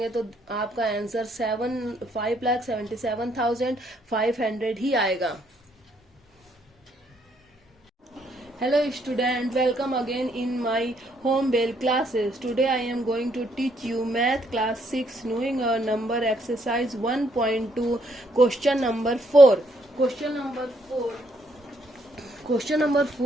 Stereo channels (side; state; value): both; normal; correlation 0.71